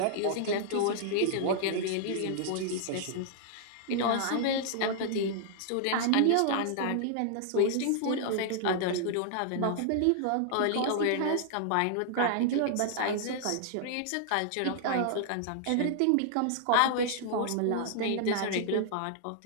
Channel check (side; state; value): both; different; correlation -0.01